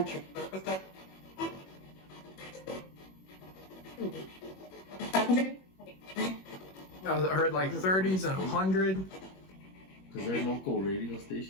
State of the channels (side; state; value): right; late; 21 ms